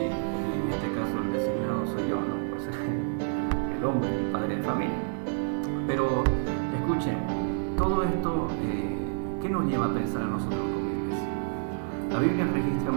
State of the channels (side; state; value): left; silent; digital silence